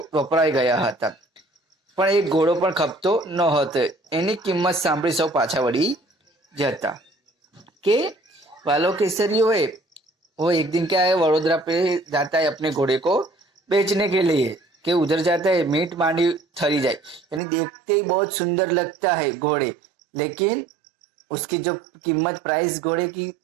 વપરાઈ ગયા હતા, પણ એક ઘોડો પણ ખપતો ન હતો. એની કિંમત સાંભળી સૌ પાછા વળી જતા. कि वालो केसरियो है वो एक दिन क्या है, वडोदरा पे जाता है अपने घोड़े को बेचने के लिए, कि उधर जाता है मीट मांडी ठरी जाए, यानी देखते ही बहुत सुंदर लगता है घोड़े, लेकिन उसकी जो कीमत प्राइस घोड़े की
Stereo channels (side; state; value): left; drops out; at 17.4 s